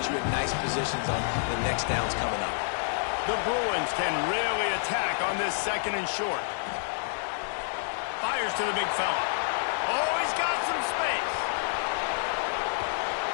you in nice positions on the next downs coming up. The Bruins can really attack on this 2nd and short. Fires to the big fella. Oh, he's got some space.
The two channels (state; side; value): silent; right; 59 dB below the other